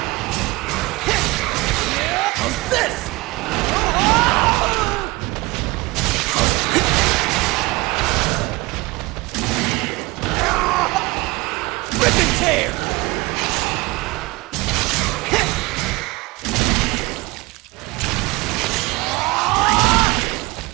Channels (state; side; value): quieter; left; 23.1 dB